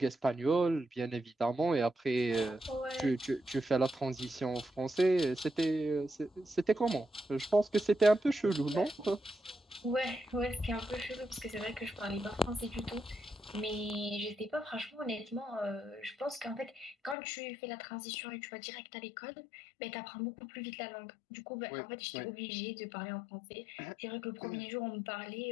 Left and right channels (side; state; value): right; drops out; at 17.2 s